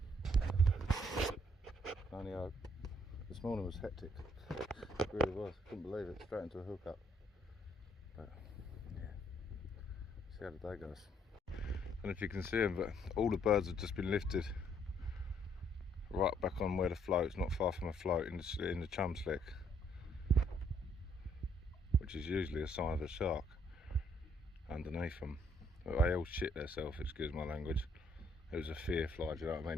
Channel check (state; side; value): normal; both; correlation 0.68